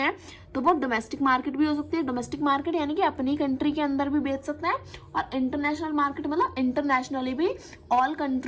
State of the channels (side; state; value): both; identical; correlation 1.00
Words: तो वो डोमेस्टिक मार्केट भी हो सकती है। डोमेस्टिक मार्केट यानी कि अपनी कंट्री के अंदर भी बेच सकते हैं, और इंटरनेशनल मार्केट मतलब इंटरनेशनली भी, all